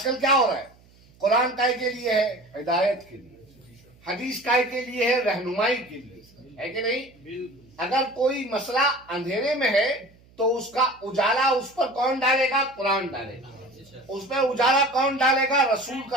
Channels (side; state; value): right; noise; hum, 28 dB below the sound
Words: क्या हो रहा है? कुरान काय के लिए है? हिदायत के लिए। हदीस काय के लिए है? रहनुमाई के लिए, है कि नहीं? अगर कोई मसला अंधेरे में है तो उसका उजाला उस पर कौन डालेगा? कुरान डालेगा। उस पर उजाला कौन डालेगा? रसूल